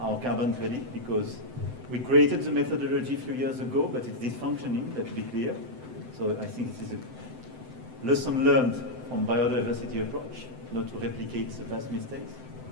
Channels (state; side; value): late; left; 7.9 ms